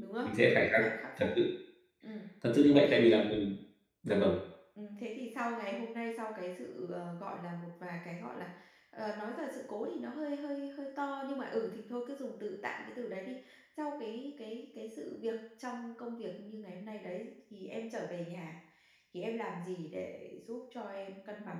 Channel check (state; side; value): identical; both; correlation 1.00